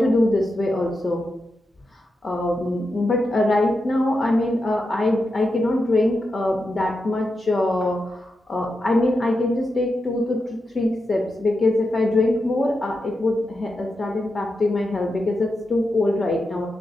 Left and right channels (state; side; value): normal; both; correlation 0.88